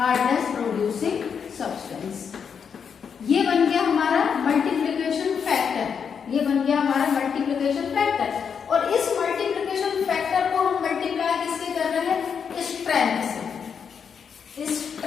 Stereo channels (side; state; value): right; quieter; 6.8 dB